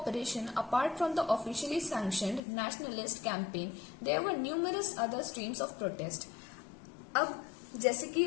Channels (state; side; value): drops out; right; at 2.4 s